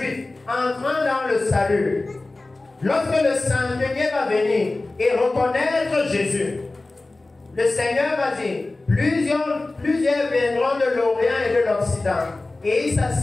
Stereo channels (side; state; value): right; quieter; 3.1 dB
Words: entrant dans le salut, lorsque le centenier va venir et reconnaître Jésus, le Seigneur va dire, plusieurs viendront de l'Orient et de l'Occident, et ils